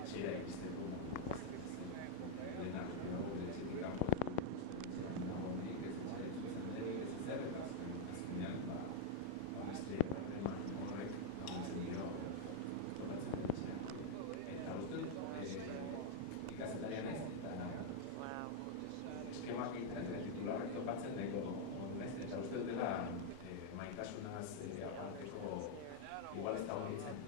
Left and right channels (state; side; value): different; both; correlation -0.01